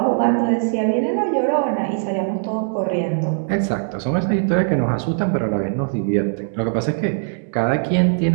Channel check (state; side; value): silent; left; 66 dB below the other